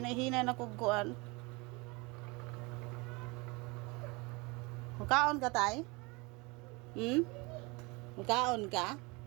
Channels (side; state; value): left; quieter; 26.6 dB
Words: na kog kuan. Mukaon ka tay? Mukaon ka?